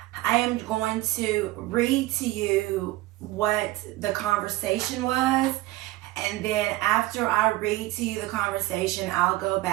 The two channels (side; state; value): left; quieter; 18.0 dB